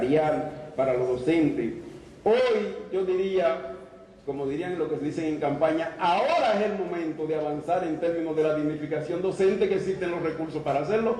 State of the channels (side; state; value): both; identical; correlation 1.00